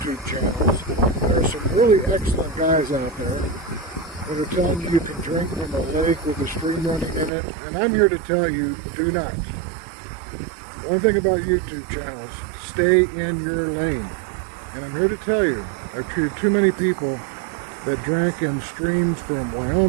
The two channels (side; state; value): left; drops out; at 7.3 s